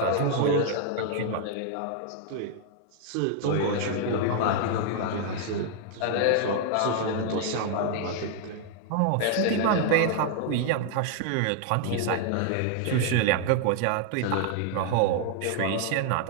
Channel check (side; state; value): both; different; correlation 0.00